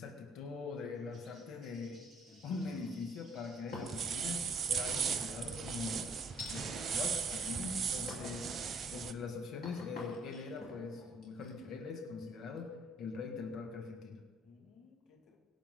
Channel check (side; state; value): both; normal; correlation 0.61